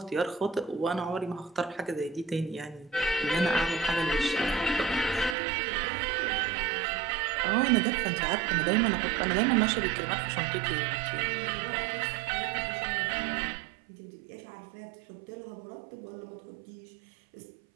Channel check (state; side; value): drops out; left; at 5.4 s